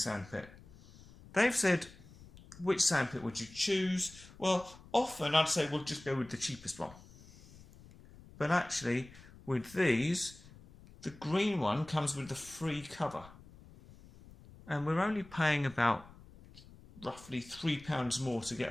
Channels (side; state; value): left; noise; rumble, 21 dB below the sound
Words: They've said, which sandpit would you choose? Well, often I'd say we'll just go with the cheapest one. But actually, with these, the green one comes with the free cover. And we're only paying about roughly £3 more to get